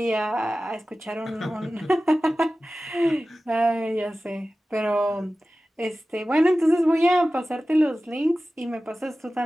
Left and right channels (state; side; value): normal; both; correlation 0.96